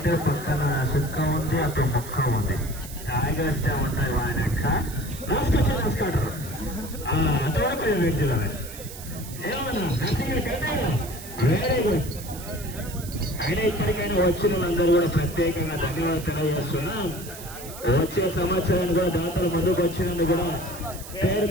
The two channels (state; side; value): noise; right; hiss, 14 dB below the sound